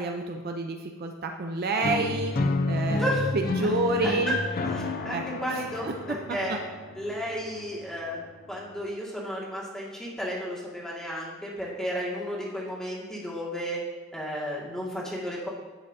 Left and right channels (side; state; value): both; normal; correlation 0.43